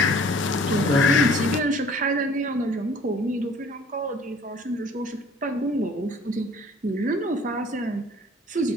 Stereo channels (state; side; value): normal; both; correlation 0.52